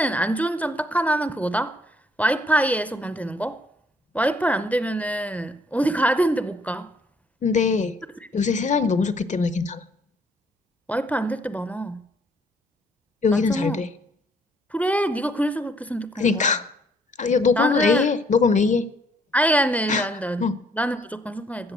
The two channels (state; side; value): normal; both; correlation 0.65